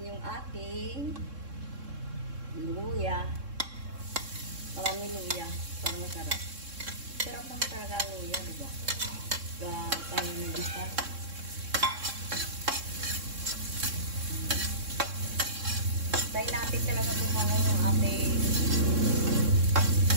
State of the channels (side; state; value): left; late; 3.6 ms